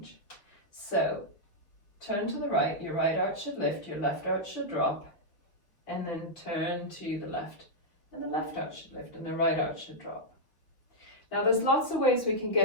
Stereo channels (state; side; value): late; right; 5.8 ms